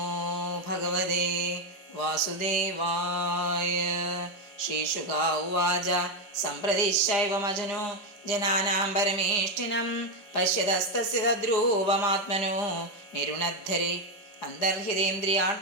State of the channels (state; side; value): late; right; 4.9 ms